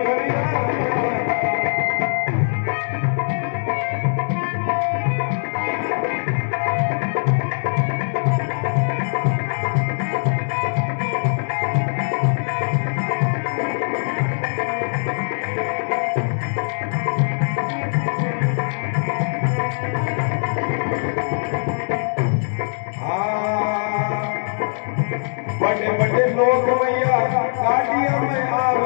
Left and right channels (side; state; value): right; silent; digital silence